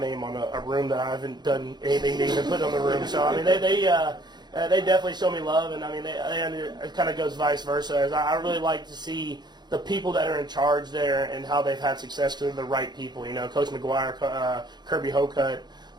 on a room that I haven't done anything to even put on the room. So I mean, they definitely show me love, and I mean, it kind of goes vice versa. I really like to see the people that are in charge there and how they've had success because they're the right people. Coach McGuire, Kirby Hocutt,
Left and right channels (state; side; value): late; left; 0.21 ms